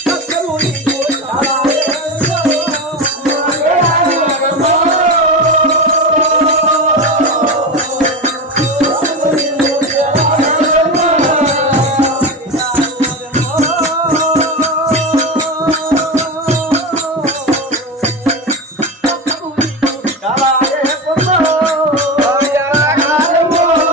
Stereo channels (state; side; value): normal; both; correlation 0.20